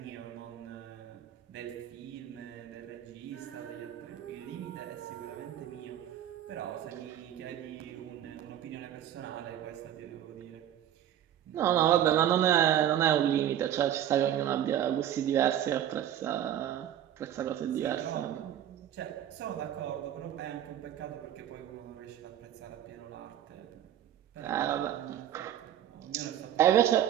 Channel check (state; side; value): quieter; left; 10.9 dB